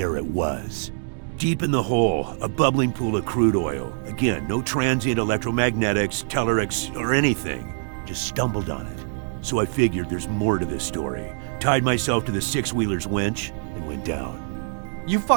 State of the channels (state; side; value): silent; left; digital silence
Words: it was. Deep in the hole, a bubbling pool of crude oil. Again, no transient electromagnetics, tellurics, or anything. Just stumbled on it. So I figured there's more to this story. Tied myself to the six-wheeler's winch and went down. You